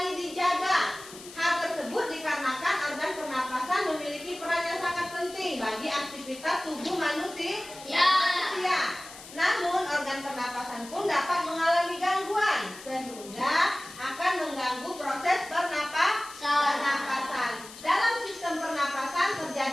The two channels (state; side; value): noise; left; hiss, 16 dB below the sound